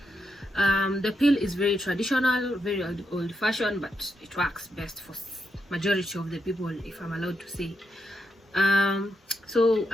The pill is very traditional, very old-fashioned, but it works best for majority of the people, if I'm allowed to say. So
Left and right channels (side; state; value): both; normal; correlation 0.83